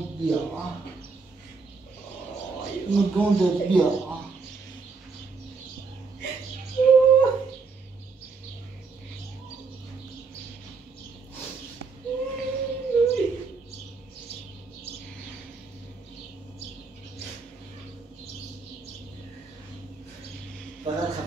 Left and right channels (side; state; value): left; quieter; 4.6 dB